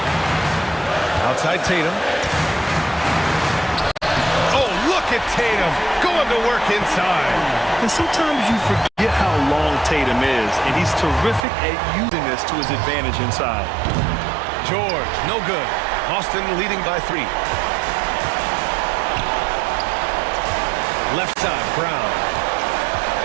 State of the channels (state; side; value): drops out; left; at 11.4 s